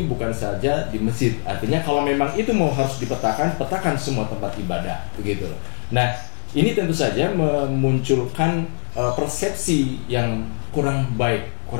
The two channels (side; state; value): right; silent; 64 dB below the other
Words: bukan saja di masjid? Artinya kalau memang itu harus dipetakan, petakan semua tempat ibadah begitu loh. Nah, ini tentu saja memunculkan persepsi yang kurang baik,